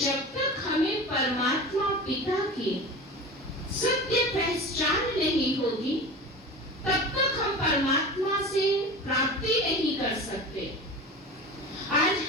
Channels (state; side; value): normal; both; correlation 0.32